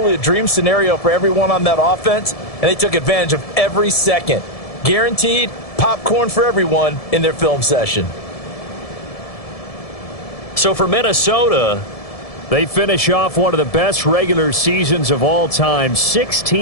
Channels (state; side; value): late; right; 1.7 ms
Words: a dream scenario for everyone on that offense, and they took advantage of every second. Guaranteed popcorn for everyone in their film session. So for Minnesota, they finish off one of the best regular seasons of all time,